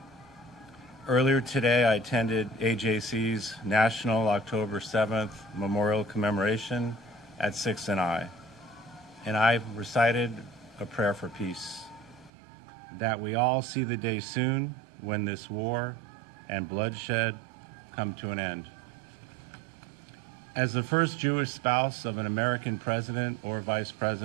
Earlier today, I attended AJC's National October 7th Memorial Commemoration at 6 and I recited a prayer for peace, that we all see the day soon when this war and bloodshed come to an end. As the first Jewish spouse of an American president or vice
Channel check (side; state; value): left; drops out; at 12.3 s